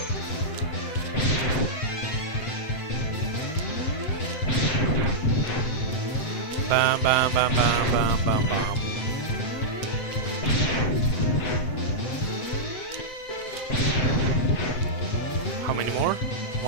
Bam, bam, bam, bam, bam, bam, bam. How many more?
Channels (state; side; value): late; right; 7.8 ms